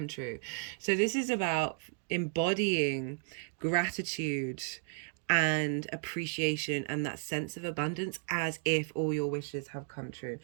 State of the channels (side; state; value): left; silent; 55 dB below the other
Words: true. So this is about embodying gratitude and appreciation and that sense of abundance as if all your wishes have come true.